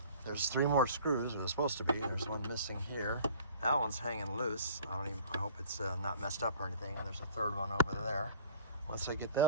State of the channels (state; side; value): inverted; both; correlation -0.48